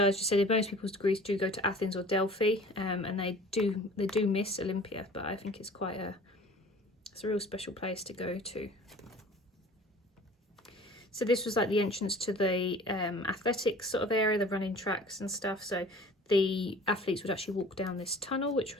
as you said, most people's degrees do go to Athens or Delphi, and they do miss Olympia, but I think it's it's a real special place to go to. So this was like the entrance to the athletics sort of area, the running tracks and stuff. So the athletes would actually walk down this tunnel, which I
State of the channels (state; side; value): normal; both; correlation 0.46